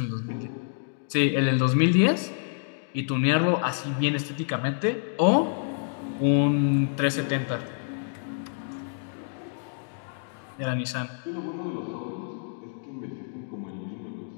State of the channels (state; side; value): silent; right; digital silence